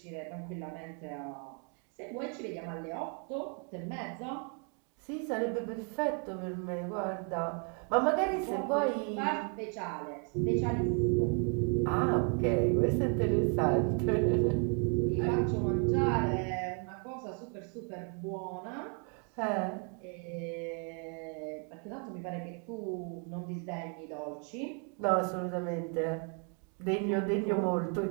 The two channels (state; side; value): quieter; left; 39.6 dB